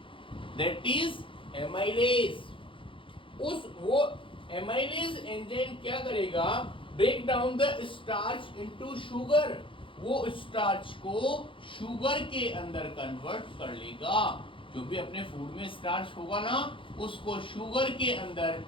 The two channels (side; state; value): right; late; 0.25 ms